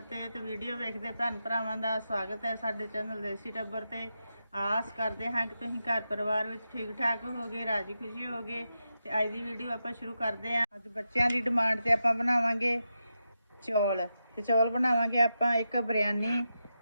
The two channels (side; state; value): both; inverted; correlation -0.88